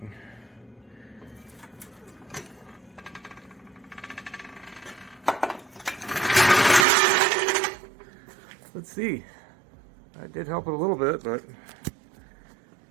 Let's see. I did help it a little bit, but I'm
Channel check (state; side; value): drops out; left; at 6.9 s